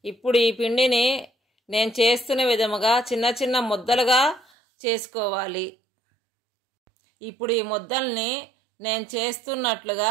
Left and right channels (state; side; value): drops out; left; at 4.5 s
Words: ఇప్పుడు ఈ పిండిని నేను చేస్తున్న విధముగా చిన్న చిన్న ముద్దలుగా చేసుకోవాలి. ఇప్పుడు ఈ ముద్దల్ని నేను చేస్తున్నట్లుగా